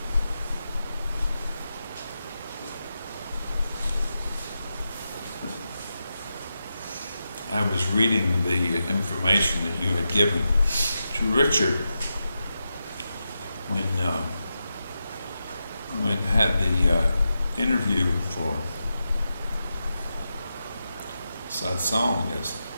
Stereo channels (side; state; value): both; inverted; correlation -0.88